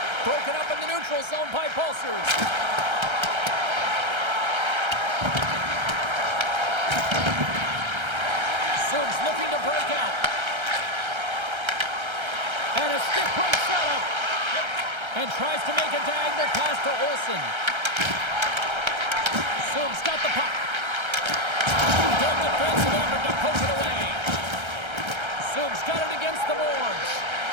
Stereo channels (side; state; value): left; late; 1.3 ms